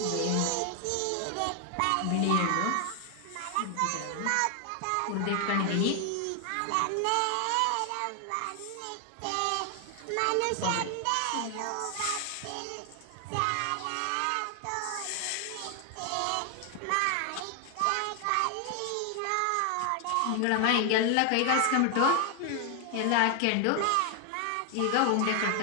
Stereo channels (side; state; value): both; different; correlation 0.00